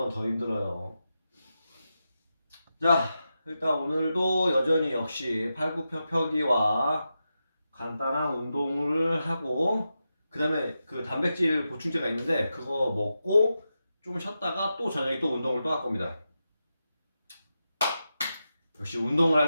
더 힘들어요. 자, 일단 오늘도 여전히 역시 팔굽혀펴기와 간단한 운동을 하고 그 다음에 그 단백질 보충제가 있는데 그거 먹고 좀 쉬었다가 또 저녁에 또 운동을 또 할 겁니다. 역시 운동을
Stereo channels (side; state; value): both; inverted; correlation -0.89